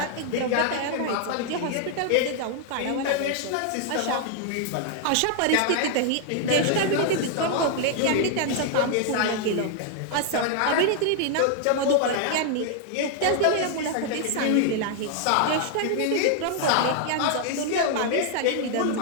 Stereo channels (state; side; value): different; both; correlation 0.00